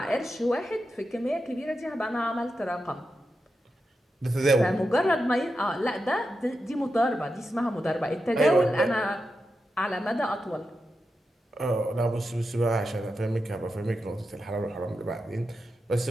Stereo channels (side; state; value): both; normal; correlation 0.89